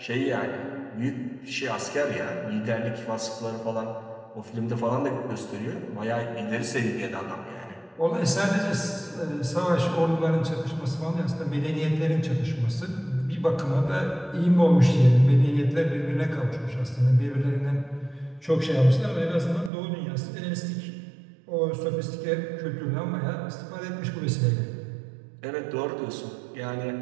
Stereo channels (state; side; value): drops out; left; at 19.7 s